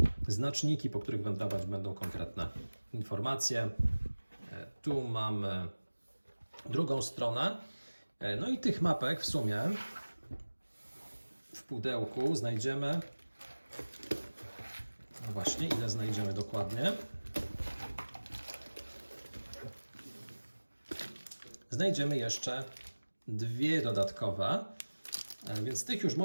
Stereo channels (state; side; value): inverted; both; correlation -1.00